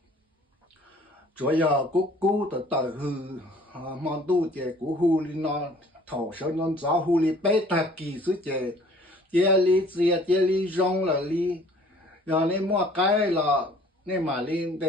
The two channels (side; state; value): both; normal; correlation 0.54